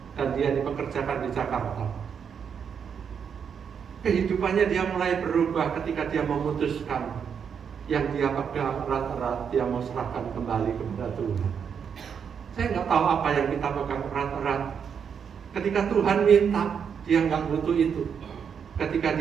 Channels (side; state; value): left; quieter; 7.2 dB